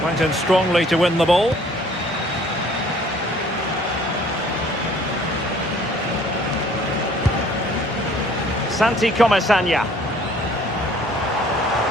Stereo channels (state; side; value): normal; both; correlation 0.56